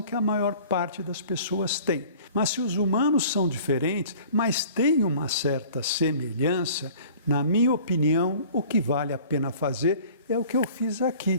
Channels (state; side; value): inverted; both; correlation -0.48